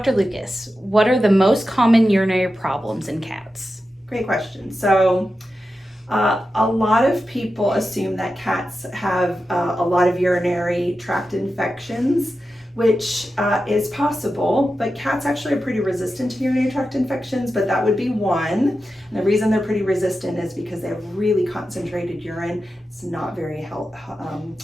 Lucas, what are the most common urinary problems in cats? Great question. So a lot of people assume that cats have a lot of urinary tract infections, which is possible, but cats actually are pretty resistant to urinary tract infections, but that would be one. And the reason they're pretty resistant is because they have really concentrated urine. It's not very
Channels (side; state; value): both; normal; correlation 0.91